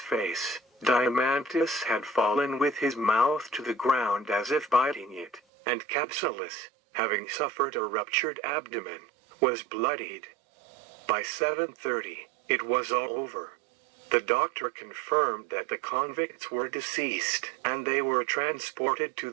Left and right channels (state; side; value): drops out; left; at 5.4 s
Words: Diamantis had fallen with his mouth to the ground as if biting it, and Kapsulis, having suffered a ruptured abdomen, was bloodied. By 7:30, it was all over. The doctor confirmed that the convicts were deceased, and they were transported to